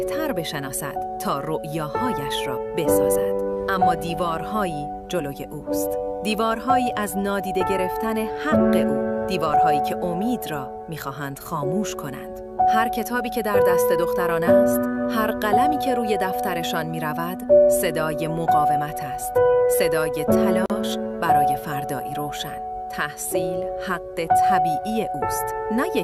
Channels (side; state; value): both; identical; correlation 1.00